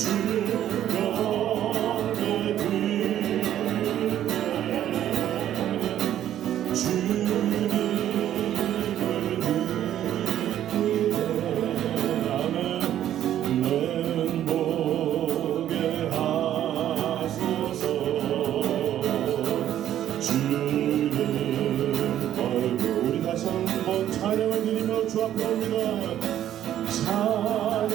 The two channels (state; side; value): quieter; left; 11.5 dB